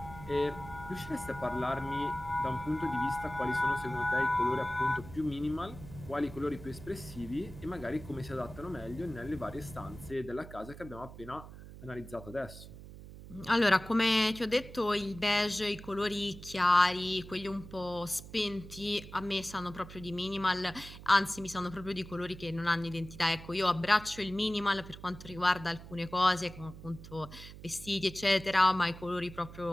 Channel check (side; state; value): right; noise; hum, 15 dB below the sound